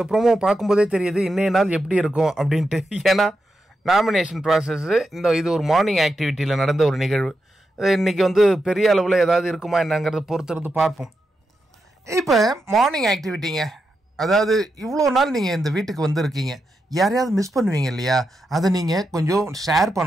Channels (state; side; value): normal; both; correlation 0.86